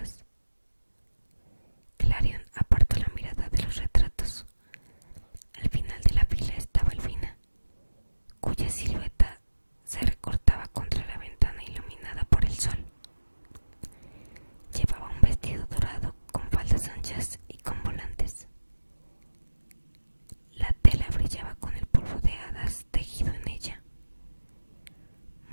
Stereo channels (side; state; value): both; inverted; correlation -1.00